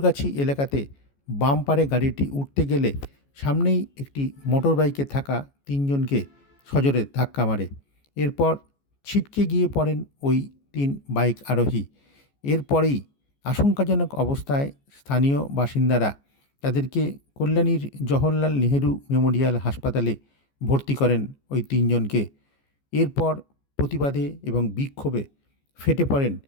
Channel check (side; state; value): right; late; 14 ms